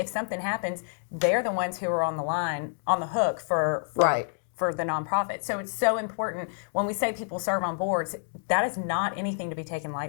something happens, they're the ones who are on the hook for right. for the nonprofit. So it's so important when we say people serve on boards, that is not anything to be taken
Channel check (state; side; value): silent; right; digital silence